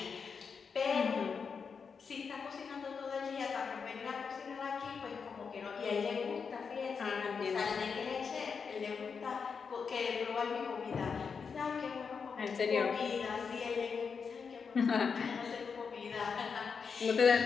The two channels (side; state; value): right; quieter; 5.8 dB